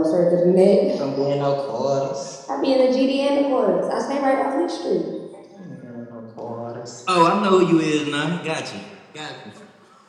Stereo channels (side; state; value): both; identical; correlation 1.00